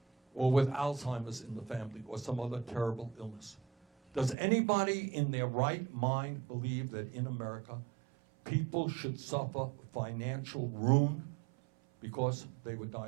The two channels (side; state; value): left; drops out; at 4.4 s